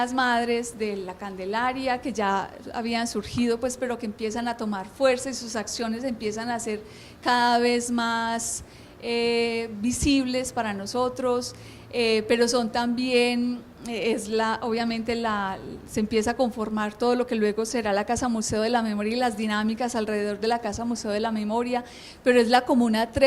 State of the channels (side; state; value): both; identical; correlation 1.00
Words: madres de la Candelaria que ya habían surgido, pues, pero que empiezan a tomar fuerza y sus acciones empiezan a ser cada vez más visibles para nosotros, pero son también, obviamente se empieza a conformar todo lo que luego será la Casa Museo de la Memoria y las dinámicas alrededor de la Casa Museo de la Memoria, pero es la Comuna